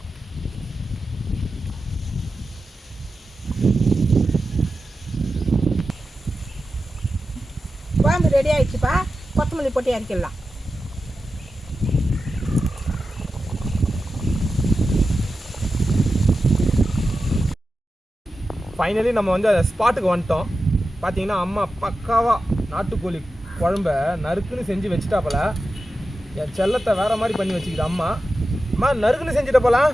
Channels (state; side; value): normal; both; correlation 0.92